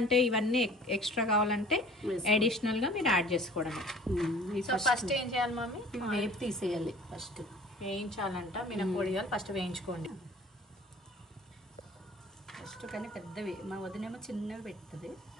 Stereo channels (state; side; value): normal; both; correlation 0.48